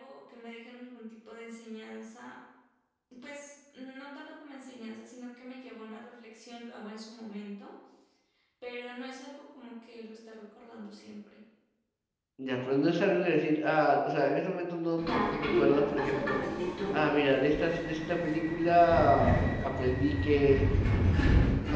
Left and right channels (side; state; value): both; identical; correlation 1.00